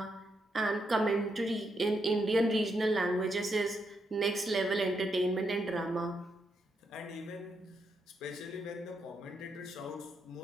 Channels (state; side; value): normal; both; correlation 0.80